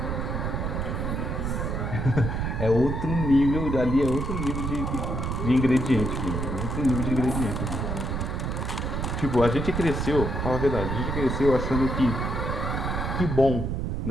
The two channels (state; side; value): noise; right; rumble, 2 dB below the sound